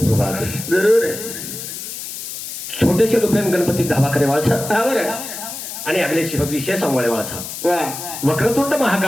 जरूर छोटेसे रुपये गणपती धावा करे वाळछा आणि अगले विशेष सांभाळे वाळछा वक्रतुंड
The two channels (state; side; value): noise; left; hiss, 8 dB below the sound